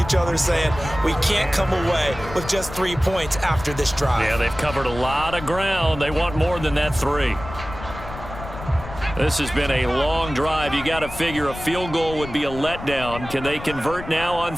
each other saying, we can't come away with just 3 points after this drive. Yeah, they've covered a lot of ground. They want more than that 3. This has been a long drive. You got to figure a field goal would be a letdown. Can they convert now on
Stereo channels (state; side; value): noise; left; rumble, 12 dB below the sound